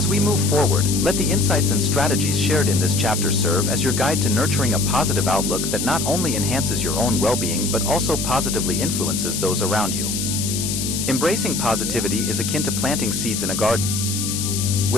we move forward, let the insights and strategies shared in this chapter serve as your guide to nurturing a positive outlook that not only enhances your own well-being but also positively influences those around you. Embracing positivity is akin to planting seeds in a garden.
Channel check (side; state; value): left; noise; hiss, 3 dB below the sound